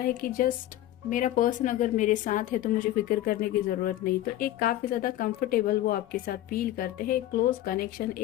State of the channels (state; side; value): quieter; right; 13.9 dB